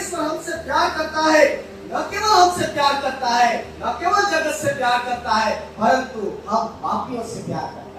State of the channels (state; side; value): identical; both; correlation 1.00